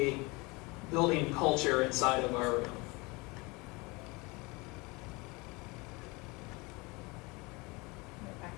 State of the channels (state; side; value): quieter; right; 25.8 dB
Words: building culture inside of our room. Back